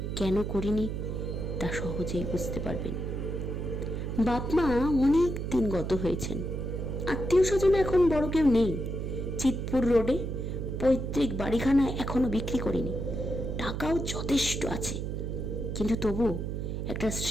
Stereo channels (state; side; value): noise; right; hum, 3 dB below the sound